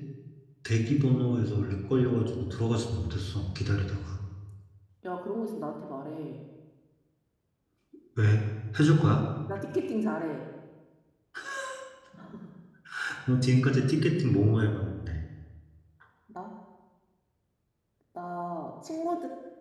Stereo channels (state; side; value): identical; both; correlation 1.00